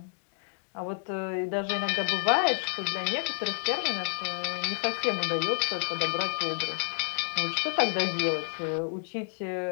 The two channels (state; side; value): silent; right; digital silence